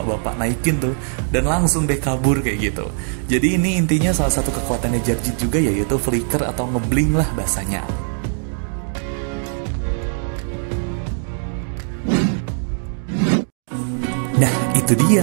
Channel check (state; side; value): silent; left; 58 dB below the other